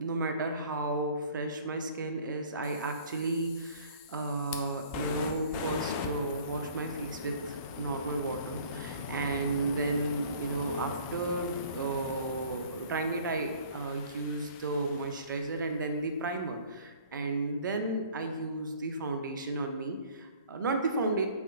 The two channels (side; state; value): both; inverted; correlation -0.52